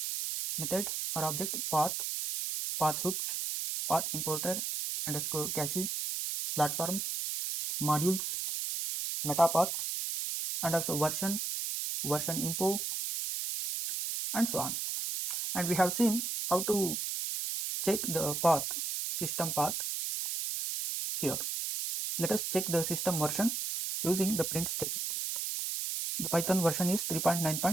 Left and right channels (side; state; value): right; noise; hiss, 2 dB below the sound